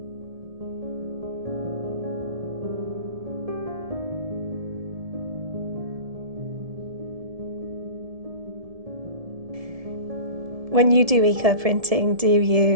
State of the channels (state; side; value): late; left; 1.7 ms